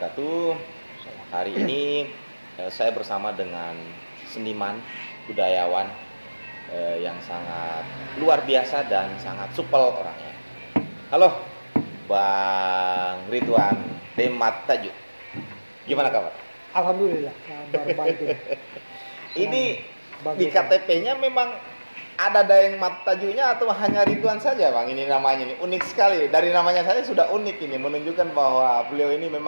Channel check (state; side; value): inverted; both; correlation -1.00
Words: Hari ini saya bersama dengan seniman, budayawan yang sangat luar biasa dan sangat supel orangnya. Halo, Bang Ridwan Demat Tajuk. Gimana kabar? Alhamdulillah, kabar baik. Ini di KTP-nya memang ada Daeng Mat Tajunya atau hanya Ridwan saja, Bang? Ini namanya ini unik sekali. Dari namanya saja sudah unik ini, menunjukkan bahwa beliau ini